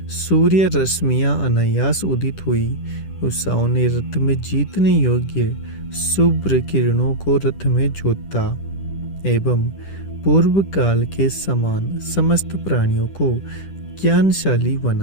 सूर्य रश्मियां अनायास उदित हुई उषाओं ने रथ में जीतने योग्य शुभ्र किरणों को रथ में जोता एवं पूर्व काल के समान समस्त प्राणियों को ज्ञानशाली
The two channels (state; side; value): late; right; 10 ms